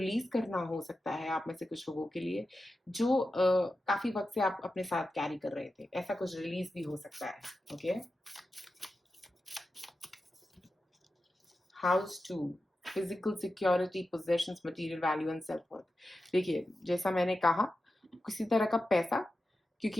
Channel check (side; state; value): both; normal; correlation 0.91